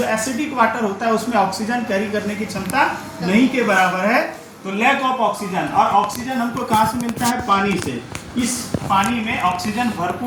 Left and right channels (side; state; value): both; identical; correlation 1.00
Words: एसिडिक वाटर होता है उसमें ऑक्सीजन कैरी करने की क्षमता नहीं के बराबर है, तो लैक ऑफ ऑक्सीजन। और ऑक्सीजन हमको कहाँ से मिलता है? पानी से। इस पानी में ऑक्सीजन